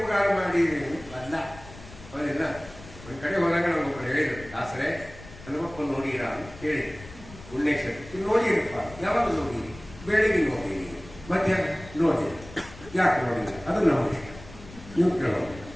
ಮಾಡಿದ್ದೀವಿ ಅಲ್ಲ ಹೌದಿಲ್ಲ. ಒಂದು ಕಡೆ ಹೋದಾಗ ನಮಗೊಬ್ಬರು ಹೇಳಿದ್ರು, ದಾಸರೇ ಹನುಮಪ್ಪ ನೋಡಿರಾ ಅಂತ ಕೇಳಿ, ಪುಣ್ಯೇಶ್ವರಿ ನೋಡಿರಪ್ಪ, ಯಾವಾಗ ನೋಡಿರಿ? ಬೆಳಿಗ್ಗೆ ನೋಡಿರಿ, ಮಧ್ಯಾಹ್ನ ನೋಡಿರಿ, ಯಾಕೆ ನೋಡಿಲ್ಲ? ಅದು ನಮ್ಮ ಇಷ್ಟ, ನೀವು ಕೇಳೋದು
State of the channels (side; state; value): left; noise; rumble, 18 dB below the sound